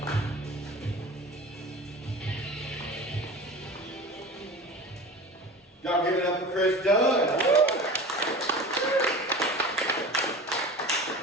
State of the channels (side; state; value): both; normal; correlation 0.35